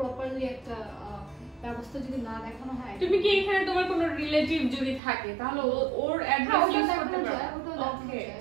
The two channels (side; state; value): left; drops out; at 5.0 s